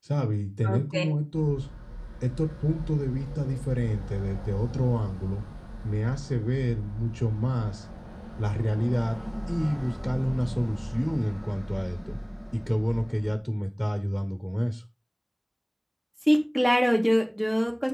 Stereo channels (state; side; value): identical; both; correlation 1.00